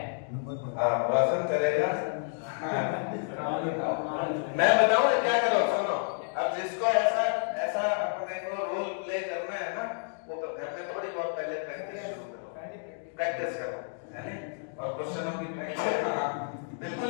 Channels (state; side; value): silent; right; digital silence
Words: रोशन करेगा। मैं बताऊं क्या करो, सुनो। अब जिसको ऐसा अपने को रोल प्ले करना है ना, वो घर में थोड़ी बहुत पहले प्रैक्टिस करो, है ना? और क्वेश्चनों की प्रैक्टिस बिल्कुल